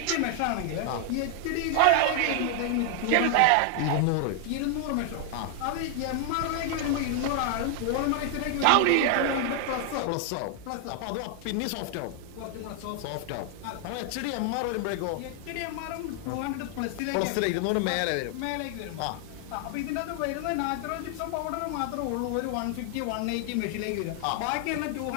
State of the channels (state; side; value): different; both; correlation 0.00